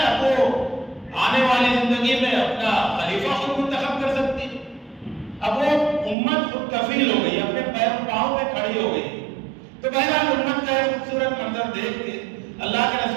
اب وہ آنے والی زندگی میں اپنا خلیفہ خود منتخب کر سکتی ہے۔ اب وہ امت خود کفیل ہو گئی، اپنے پاؤں پہ کھڑی ہو گئی۔ تو بہرحال امت کا ایک خوبصورت منظر دیکھ کے اللہ کے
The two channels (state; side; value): drops out; left; at 6.2 s